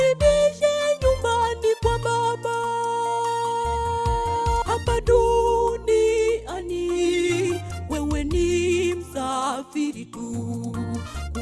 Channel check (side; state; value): both; identical; correlation 1.00